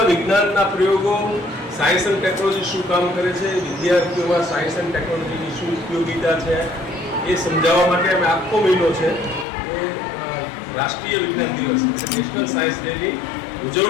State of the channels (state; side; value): drops out; right; at 9.5 s